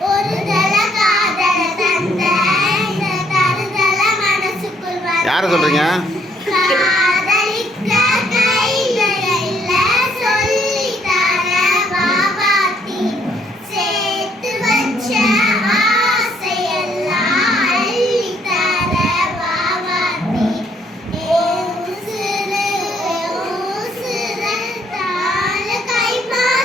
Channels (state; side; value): normal; both; correlation 0.68